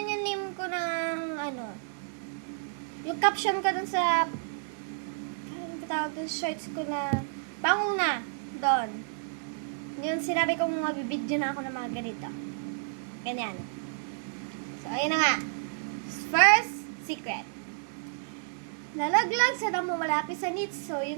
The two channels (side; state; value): left; silent; digital silence